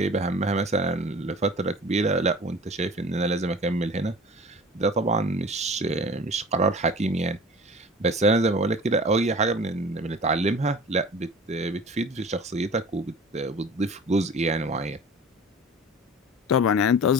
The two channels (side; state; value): both; normal; correlation 0.40